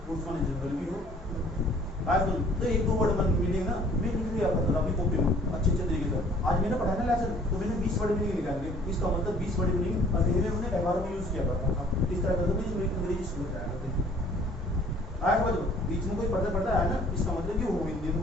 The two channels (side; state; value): both; normal; correlation 0.55